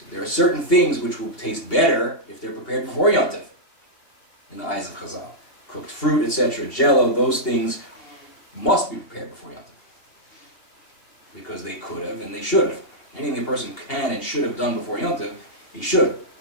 There are certain things which will taste better if they're prepared before Yom Tov, in the eyes of Chazal. Cooked fruit, etc., jello, those things must be prepared before Yom Tov, because they could have and they should have. Anything a person can and should have done before Yom Tov, he should.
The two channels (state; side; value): late; right; 2.7 ms